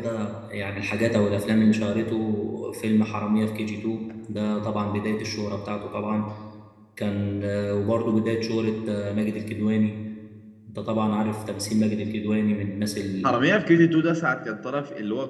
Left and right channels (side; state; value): both; identical; correlation 1.00